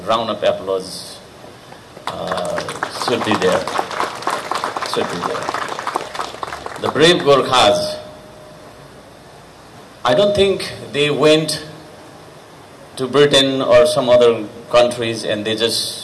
round of applause should be there. Should be there. The brave Gurkhas, I don't think they went to Britain or some other countries and they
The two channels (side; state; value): both; identical; correlation 1.00